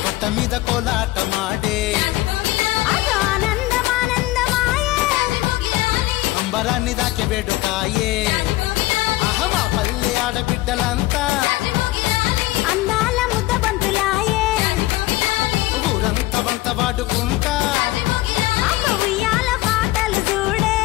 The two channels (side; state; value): right; quieter; 18.1 dB